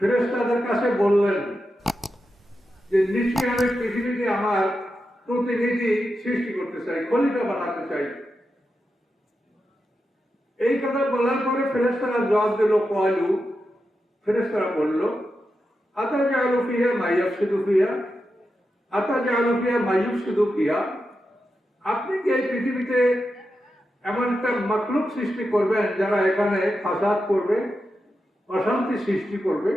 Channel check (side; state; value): both; normal; correlation 0.89